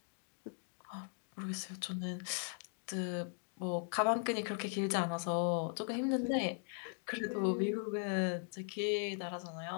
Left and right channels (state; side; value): silent; right; 52 dB below the other